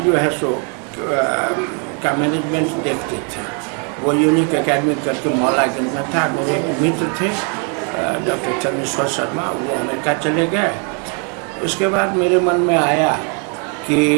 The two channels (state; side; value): quieter; left; 38.4 dB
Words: जो है सो का मैनेजमेंट देखते थे। वो यूनिक एकेडमी करके मौलागंज में था। मेरे एक मित्र थे डॉक्टर चंद्रेश्वर शर्मा, वो अमेरिका चले गए। उसके बाद मेरे मन में आया कि